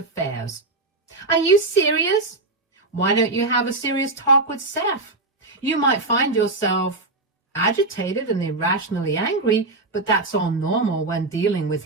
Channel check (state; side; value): quieter; left; 3.1 dB